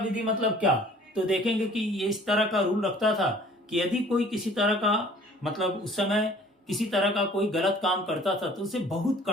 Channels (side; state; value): both; normal; correlation 0.51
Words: मतलब क्या, तो देखेंगे कि ये इस तरह का रूल रखता था कि यदि कोई किसी तरह का मतलब उस समय किसी तरह का कोई गलत काम करता था तो उसे बहुत